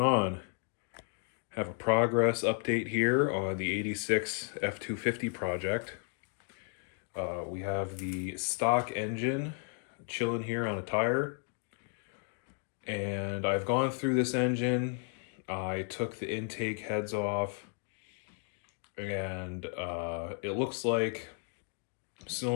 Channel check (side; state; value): right; quieter; 39.6 dB